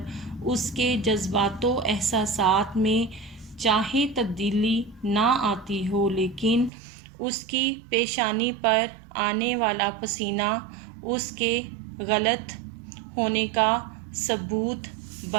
اس کے جذبات و احساسات میں چاہے تبدیلی نہ آتی ہو لیکن اس کی پیشانی پر آنے والا پسینہ اس کے غلط ہونے کا ثبوت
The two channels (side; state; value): left; drops out; at 6.7 s